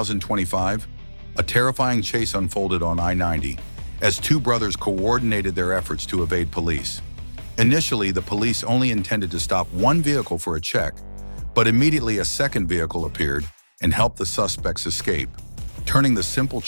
a terrifying chase unfolded on I-90 as two brothers coordinated their efforts to evade police. Initially, the police only intended to stop one vehicle for a check, but immediately a second vehicle appeared and helped the suspects escape, turning the simple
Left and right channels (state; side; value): inverted; both; correlation -1.00